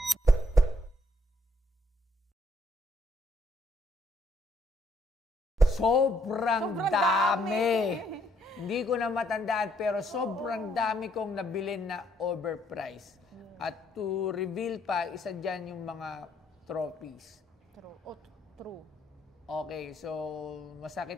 Sobrang dami! Hindi ko na matandaan pero sobrang dami kong nabilin na overpriced. At to reveal pa, isa dyan yung mga trophies. True. Okay, so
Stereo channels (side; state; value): both; normal; correlation 0.71